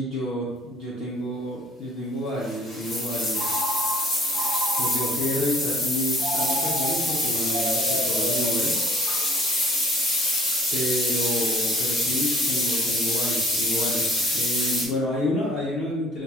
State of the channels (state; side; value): normal; both; correlation 0.56